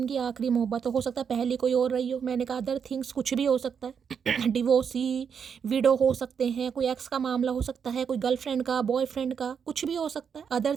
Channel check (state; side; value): quieter; left; 7.0 dB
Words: आखिरी मोहब्बत हो सकता है पहली कोई और रही हो। मैंने कहा अदर थिंग्स कुछ भी हो सकता है। डिवोर्सी, विडो हो सकते हैं, कोई एक्स का मामला हो सकता है, कोई गर्लफ्रेंड का, बॉयफ्रेंड का, कुछ भी हो सकता है। अदर